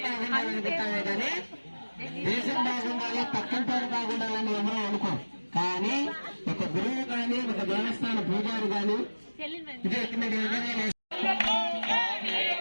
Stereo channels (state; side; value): inverted; both; correlation -1.00